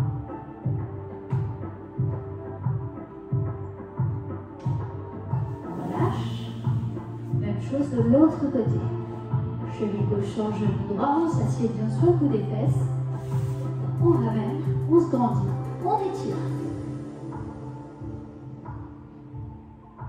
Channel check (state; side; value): identical; both; correlation 1.00